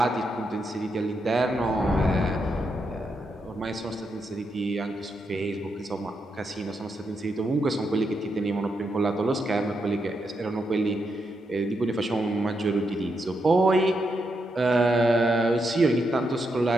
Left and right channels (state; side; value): normal; both; correlation 0.82